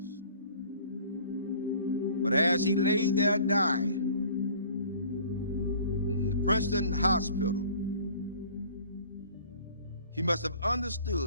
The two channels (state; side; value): inverted; both; correlation -0.50